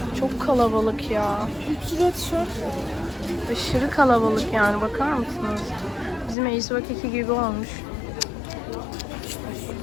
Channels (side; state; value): right; drops out; at 6.4 s